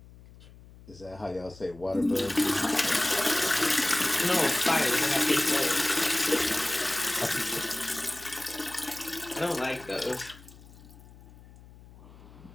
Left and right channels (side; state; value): left; noise; hum, 21 dB below the sound